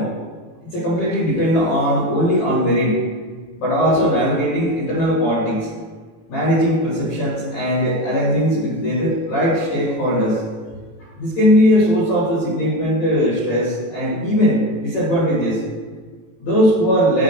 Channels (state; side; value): late; right; 18 ms